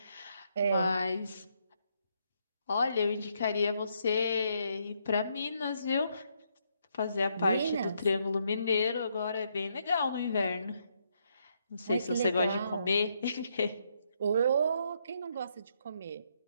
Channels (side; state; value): both; inverted; correlation -0.75